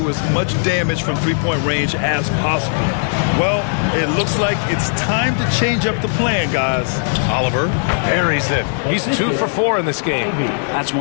as much damage from three-point range as possible. Well, it looks like it's time to change up the plan, guys. Oliver buries it. He's 2 for 4 in this game. That's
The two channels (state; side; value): silent; right; digital silence